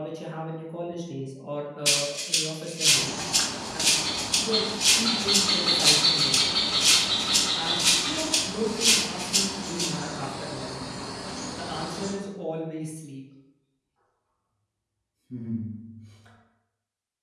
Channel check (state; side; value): identical; both; correlation 1.00